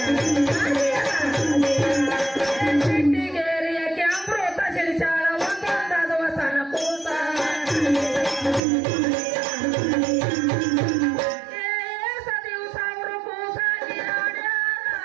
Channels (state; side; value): drops out; left; at 8.6 s